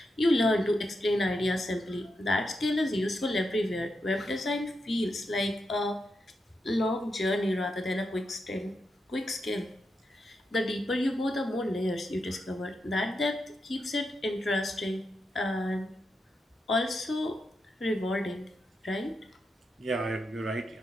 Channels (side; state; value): both; normal; correlation 0.86